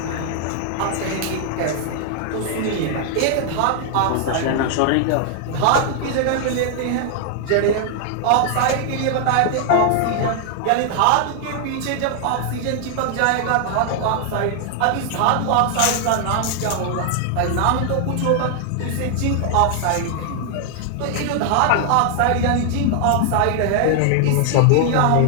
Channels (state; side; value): different; both; correlation 0.00